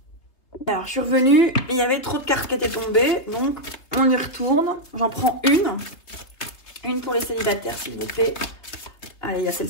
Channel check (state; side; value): late; right; 3.0 ms